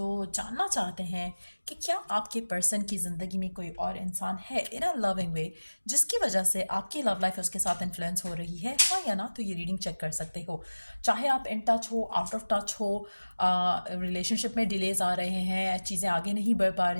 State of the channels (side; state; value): both; inverted; correlation -1.00